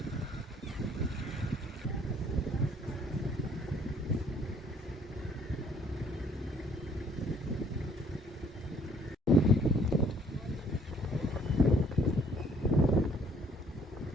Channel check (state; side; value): normal; both; correlation 0.60